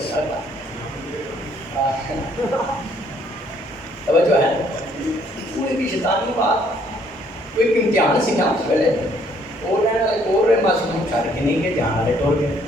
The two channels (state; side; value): normal; both; correlation 0.64